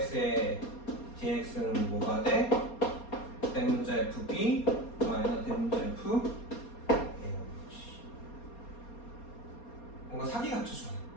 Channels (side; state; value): right; late; 4.2 ms